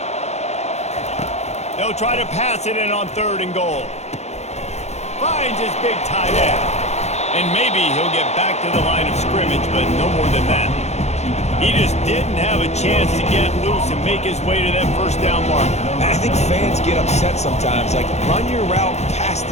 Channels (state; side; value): late; right; 0.32 ms